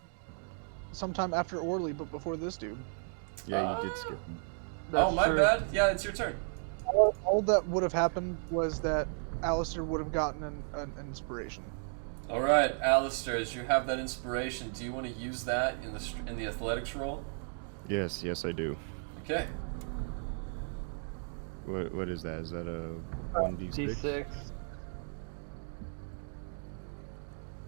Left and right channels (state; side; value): silent; left; 55 dB below the other